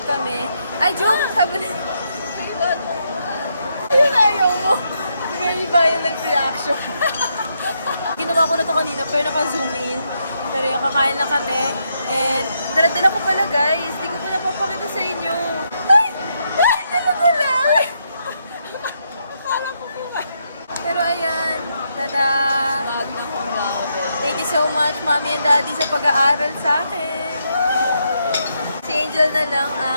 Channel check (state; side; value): inverted; both; correlation -0.79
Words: kami. Ay, joke! Kabalan. Ayun, ayaw mo. May iba yung nag-reaction. Ginawa ko na to kanina pero naka-zoom in. Pero yung kakain na kami. And dala-dala ko pala guys. Di ko pa napapakita sa inyo. Ay! Ay! Dala-dala! Akala ko ba? Pero ayan. Tada! Magna cum laude. Thank you so much, mommy and daddy, sa pag-aaral sa akin. Si Angel na lang